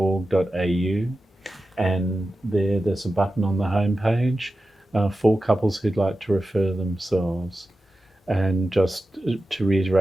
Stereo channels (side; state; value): both; normal; correlation 0.93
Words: and there's a button on the homepage for couples who'd like to refer themselves. And just to